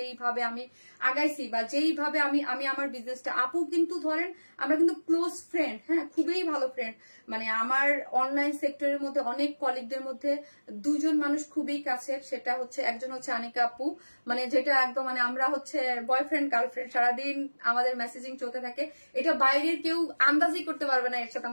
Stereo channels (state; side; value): inverted; both; correlation -1.00